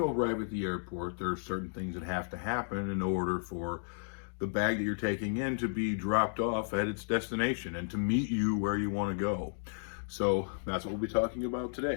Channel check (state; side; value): silent; right; digital silence